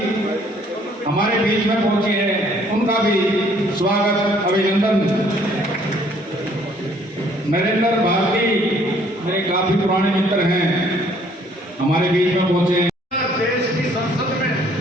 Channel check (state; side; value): normal; both; correlation 0.61